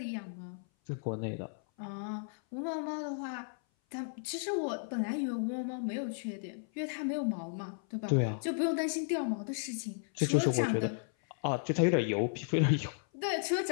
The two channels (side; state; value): right; silent; 55 dB below the other